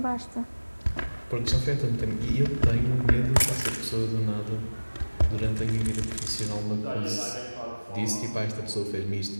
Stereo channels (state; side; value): inverted; both; correlation -1.00